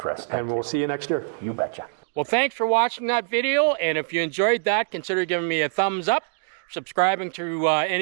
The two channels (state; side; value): silent; left; digital silence